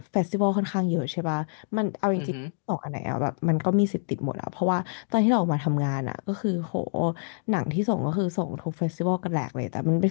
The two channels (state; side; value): silent; right; digital silence